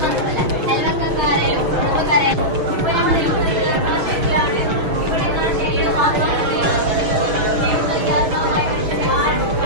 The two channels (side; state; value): left; late; 6.4 ms